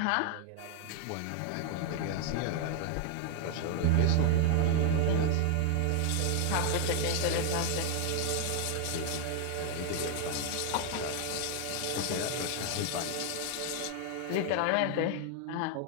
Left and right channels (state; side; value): different; both; correlation 0.00